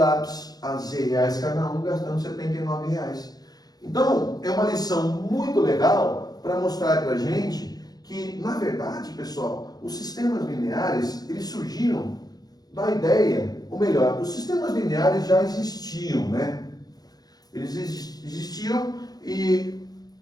a Z reais cada um, gastando R$79. Então, é uma lição muito legal para mostrar para a gente que, na verdade, pessoal, os sistemas lineares, eles surgiram da ideia, ou melhor, os sistemas lineares já existiam, né? Eles existiam e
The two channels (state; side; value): late; right; 0.19 ms